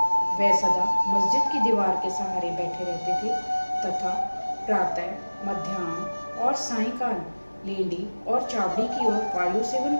वे सदा मस्जिद की दीवार के सहारे बैठे रहते थे तथा प्रातः, मध्याह्न और सायंकाल लेंडी और चावड़ी की ओर वायु सेवन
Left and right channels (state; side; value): inverted; both; correlation -1.00